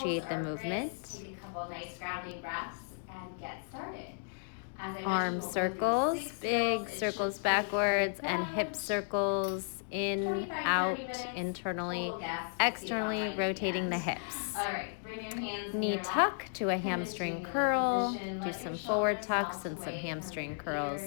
the movement. Take a couple nice grounding breaths and get started. Arm circles, big circles backwards, and hip circles in, out, internally, externally, rotating the hips. Knee tuck to a hamstring curl. Do some forward tucks and some hamstring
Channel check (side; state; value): right; silent; digital silence